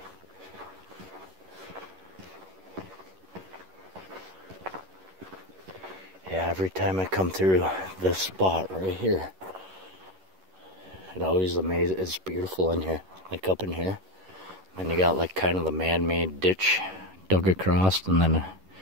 Yeah, every time I come through this spot right here, it always amazes. It's beautiful in here, like up in here. And you got like kind of the man-made ditch dug across, and then a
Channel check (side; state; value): left; late; 11 ms